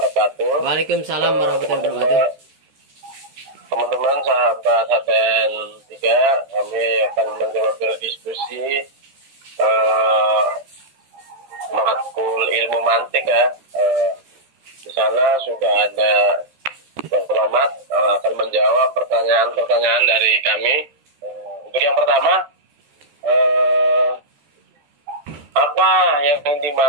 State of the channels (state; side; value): late; left; 13 ms